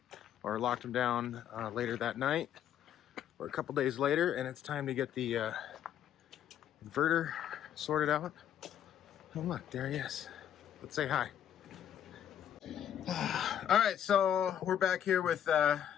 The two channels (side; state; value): right; quieter; 10.0 dB